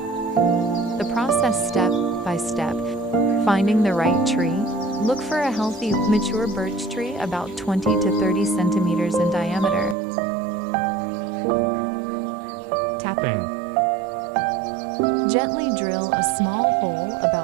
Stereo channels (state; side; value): drops out; left; at 10.0 s